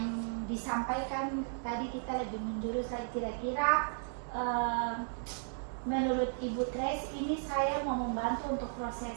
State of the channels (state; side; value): silent; left; 55 dB below the other